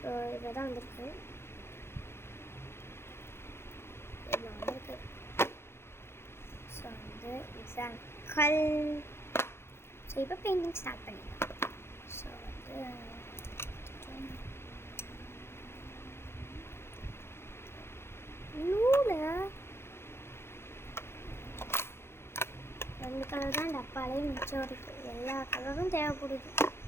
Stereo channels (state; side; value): late; right; 0.12 ms